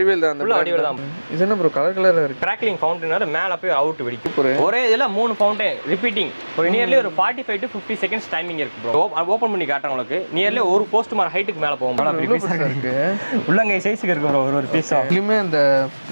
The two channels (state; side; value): inverted; both; correlation -1.00